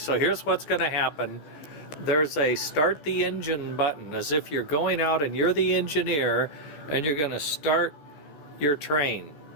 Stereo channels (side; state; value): right; late; 14 ms